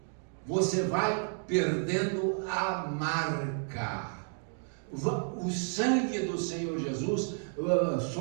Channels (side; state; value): left; silent; 57 dB below the other